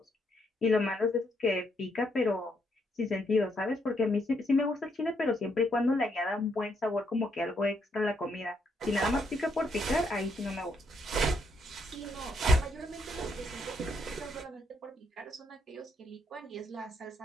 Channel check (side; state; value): both; normal; correlation 0.75